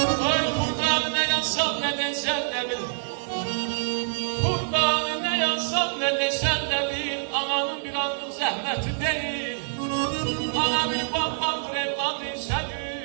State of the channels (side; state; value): left; silent; digital silence